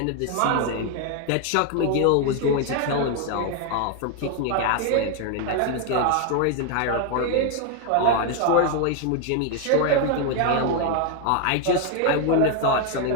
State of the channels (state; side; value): different; both; correlation 0.01